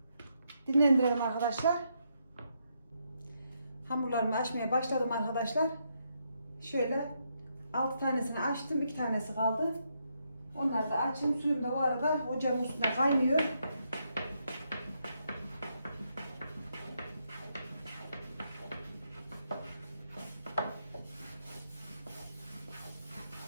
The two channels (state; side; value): inverted; both; correlation -0.78